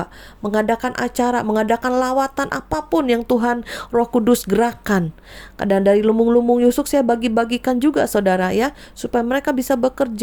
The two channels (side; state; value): both; identical; correlation 1.00